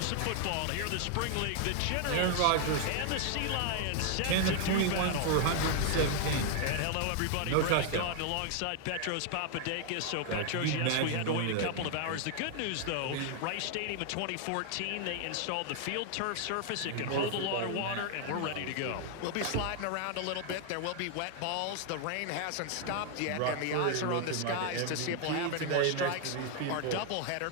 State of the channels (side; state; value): both; different; correlation 0.00